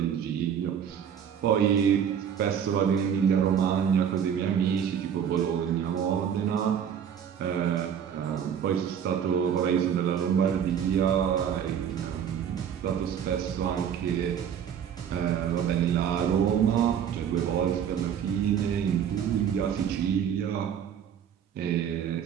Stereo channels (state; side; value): quieter; left; 8.5 dB